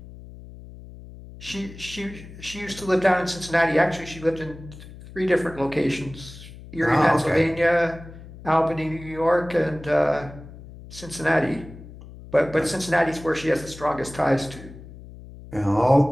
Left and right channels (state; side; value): noise; left; hum, 16 dB below the sound